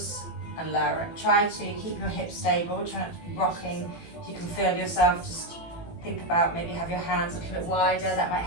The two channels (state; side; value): late; right; 18 ms